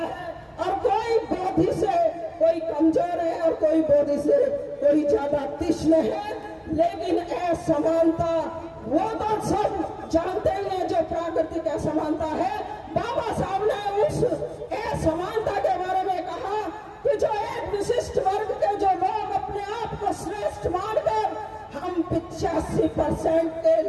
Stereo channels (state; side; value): identical; both; correlation 1.00